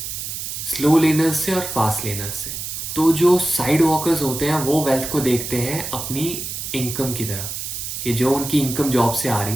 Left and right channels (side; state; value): right; noise; hiss, 6 dB below the sound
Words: स्लो लेनर्स से और फास्ट लेनर्स से। तो जो साइड वॉकर्स होते हैं वो वेल्थ को देखते हैं अपनी इनकम की तरह, कि जो उनकी इनकम जॉब से आ रही